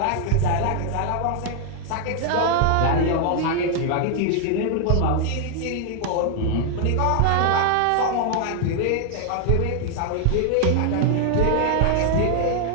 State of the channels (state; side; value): different; both; correlation 0.00